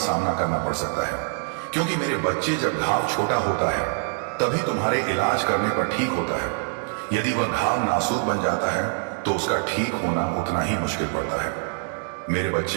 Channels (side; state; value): left; silent; 62 dB below the other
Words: करना पड़ सकता है। क्योंकि मेरे बच्चे, जब घाव छोटा होता है तभी तुम्हारे इलाज करने पर ठीक होता है। यदि वह घाव नासूर बन जाता है तो उसका ठीक होना उतना ही मुश्किल पड़ता है। मेरे